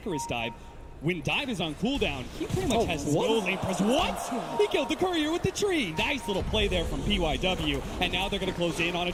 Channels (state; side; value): identical; both; correlation 1.00